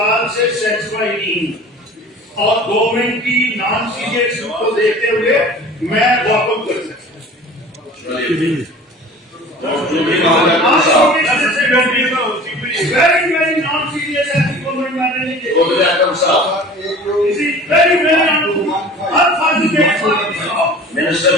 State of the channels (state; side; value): normal; both; correlation 0.42